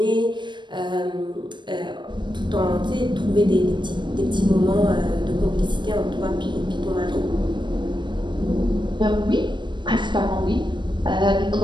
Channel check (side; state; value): left; late; 0.22 ms